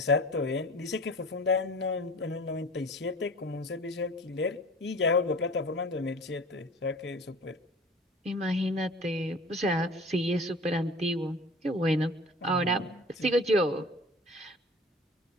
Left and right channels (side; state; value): both; normal; correlation 0.42